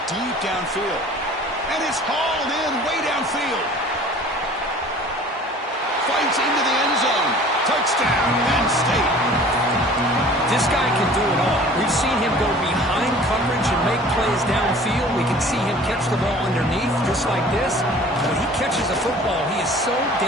deep downfield. And it's hauled in way downfield. Fights into the end zone. Touchdown, Penn State. This guy can do it all. We've seen him go behind coverage and make plays downfield. We can see him catch the ball underneath just like this. When he catches a football, he is so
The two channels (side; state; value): both; normal; correlation 0.47